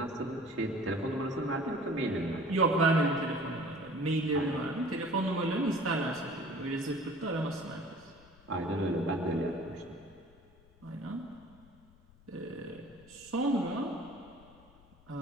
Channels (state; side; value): noise; left; rumble, 26 dB below the sound